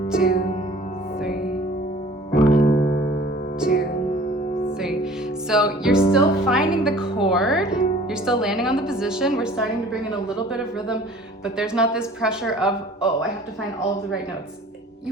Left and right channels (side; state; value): both; normal; correlation 0.49